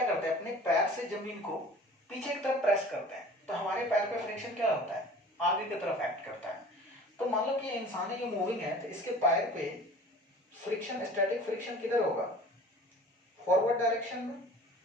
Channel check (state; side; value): normal; both; correlation 0.44